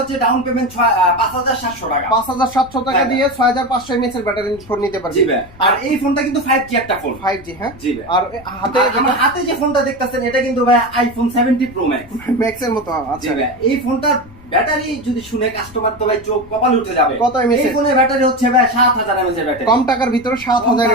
হচ্ছে ডাউন পেমেন্ট 5700 টাকা। 5700 টাকা দিয়ে 6500 mAh এর ব্যাটারি ফোন নিতে পারবে। জি ভাই। আর এই ফোনটা কিন্তু 5G একটা ফোন। 5G, হ্যাঁ। জি ভাই। আর হাতে আমার হাতে যে ফোনটা দেখতেছেন এটা কিন্তু ভাই আইফোন 70 প্রো ম্যাক্স। ম্যাক্স এর মতো। জি আচ্ছা ভাই। এই ফোনটার ব্যাটারি যদি শুনে কাস্টমার তো ভাই চোখ কপাল উঠে যাবে। কত mAh? এই ফোনের ব্যাটারি হচ্ছে ভাই 7000 mAh এর ব্যাটারি। কম টাকার ভিতরে 7000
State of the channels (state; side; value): noise; left; rumble, 22 dB below the sound